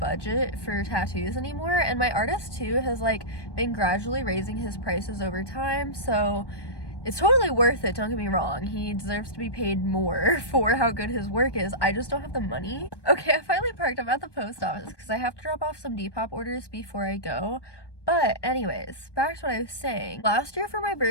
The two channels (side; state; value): right; late; 1.2 ms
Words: for tattoos anymore, and my artist too has like been gradually raising his prices over time, so it's totally worth it, don't get me wrong. He deserves to be paid more for how good his work is. I just don't have the money. Okay, I finally parked. I'm at the post office because I have to drop off some Depop orders before I go. But anyways, back to what I was saying. Last year for my